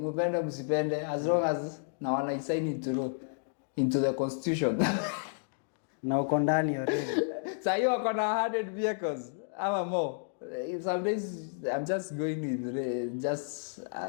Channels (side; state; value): right; silent; digital silence